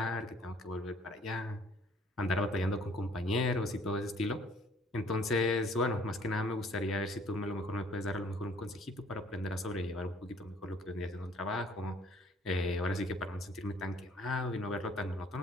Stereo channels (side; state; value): both; normal; correlation 0.59